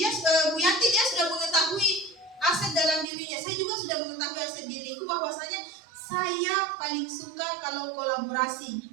Bu Yanti dia sudah mengetahui aset dalam dirinya. Saya juga sudah mengetahui aset diriku bahwasanya saya paling suka kalau kolaborasi.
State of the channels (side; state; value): left; drops out; at 3.1 s